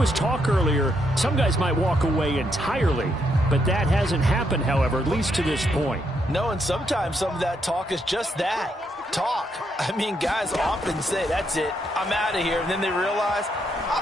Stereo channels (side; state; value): both; normal; correlation 0.77